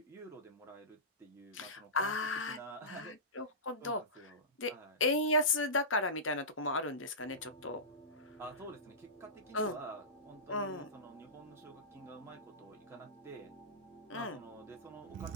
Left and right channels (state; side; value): normal; both; correlation -0.20